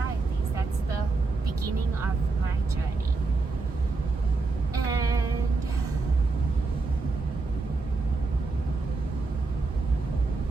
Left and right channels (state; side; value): quieter; left; 3.8 dB